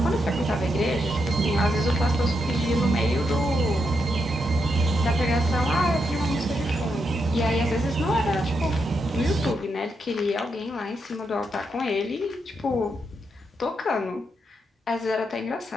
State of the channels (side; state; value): both; normal; correlation 0.82